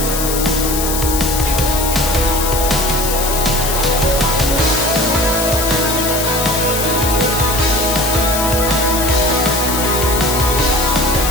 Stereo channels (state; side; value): noise; left; hiss, 3 dB below the sound